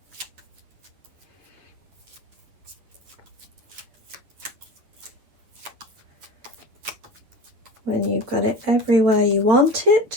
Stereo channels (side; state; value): left; late; 9.5 ms